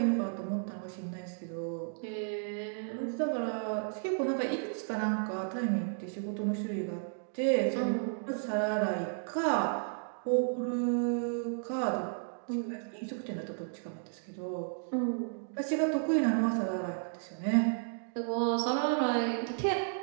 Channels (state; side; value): silent; left; digital silence